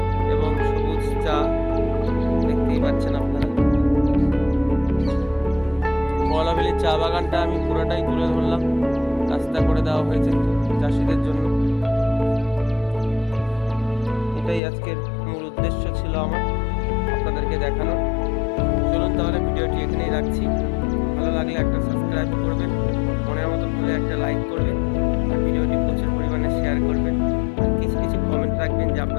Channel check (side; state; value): right; drops out; at 14.6 s